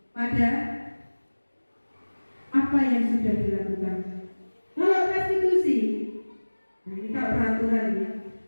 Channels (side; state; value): both; inverted; correlation -1.00